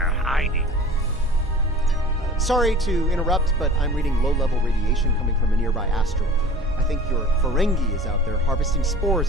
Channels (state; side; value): normal; both; correlation 0.43